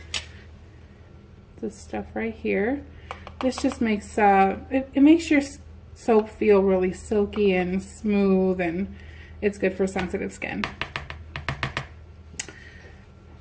This stuff right here. This just makes it makes your soap feel really silky and smooth, and it's good for sensitive skin.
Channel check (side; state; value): both; identical; correlation 1.00